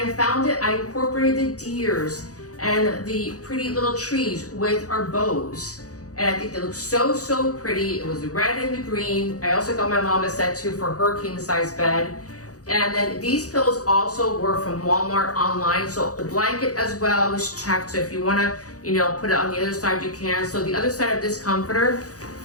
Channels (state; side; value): late; right; 0.67 ms